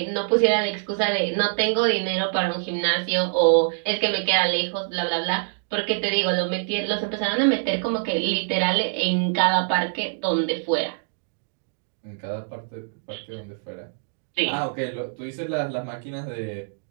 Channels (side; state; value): left; silent; digital silence